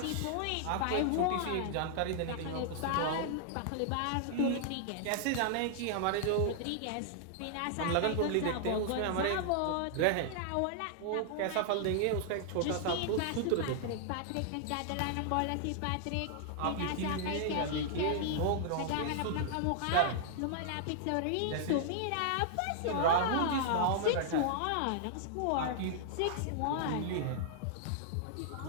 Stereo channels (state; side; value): different; both; correlation -0.01